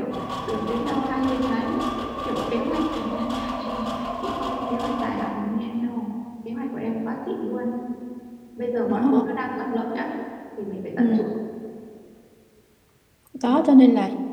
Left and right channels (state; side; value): identical; both; correlation 1.00